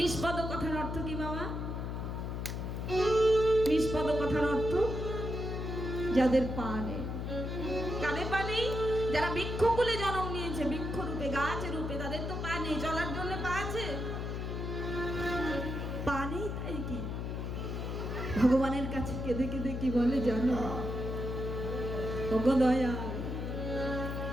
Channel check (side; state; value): left; noise; hum, 4 dB below the sound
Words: কথার অর্থ কি বাবা? নিষ্পদ কথার অর্থ যাদের পা নেই। কাদের পা নেই? যারা বৃক্ষকুলে জন্ম নিয়েছে, বৃক্ষ রূপে গাছ রূপে, তাদের তো পা নেই। চলার জন্য পা আছে? পা নেই, তাই কি ভগবানের কাছে কেঁদে কেঁদে কি বলে জানো? ওগো দয়াল,